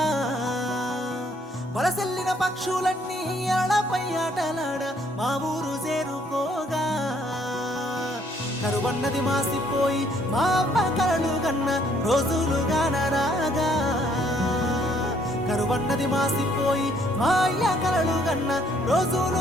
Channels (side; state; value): both; normal; correlation 0.65